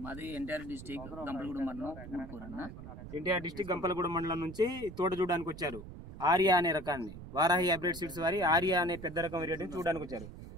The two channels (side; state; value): right; noise; rumble, 13 dB below the sound